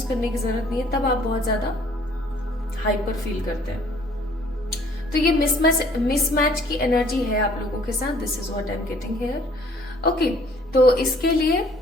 करने की जरूरत नहीं है, तब आप बहुत ज्यादा हाइपर फील करते हैं। तो ये मिसमैच की एनर्जी है आप लोगों के साथ। This is what I am getting here. Okay, तो इसके लिए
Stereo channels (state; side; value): normal; both; correlation 0.58